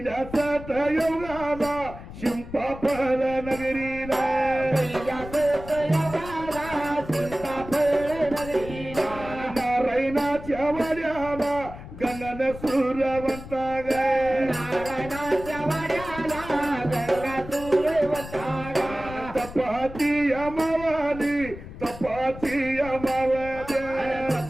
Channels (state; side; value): noise; left; rumble, 13 dB below the sound